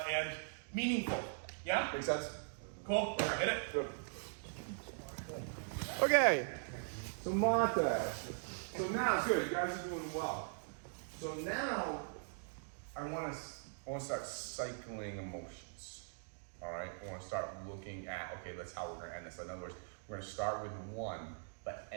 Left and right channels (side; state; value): left; silent; digital silence